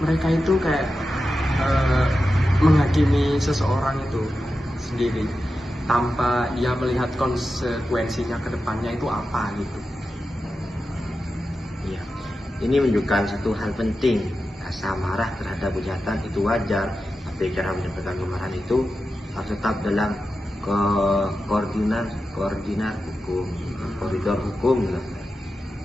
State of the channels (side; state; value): both; normal; correlation 0.91